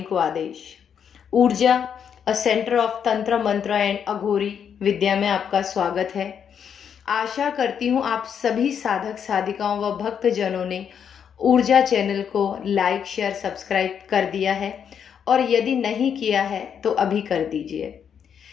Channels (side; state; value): right; quieter; 7.9 dB